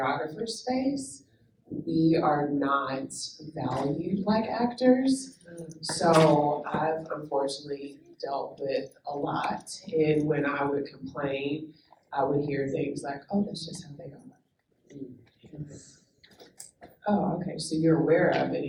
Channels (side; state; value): both; identical; correlation 1.00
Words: space, we are not valued like actors. So I've unfortunately dealt with a lot. And when I would complain, I would hear things like, oh, that's just how they are. Oh, okay, so you're aware of it